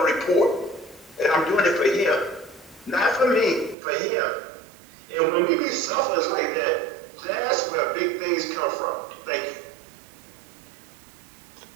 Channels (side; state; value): left; drops out; at 3.8 s